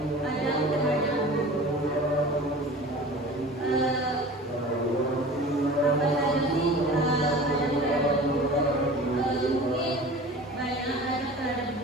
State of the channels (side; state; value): both; normal; correlation 0.39